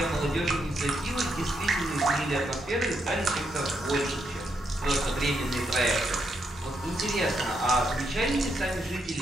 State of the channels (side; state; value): both; normal; correlation 0.79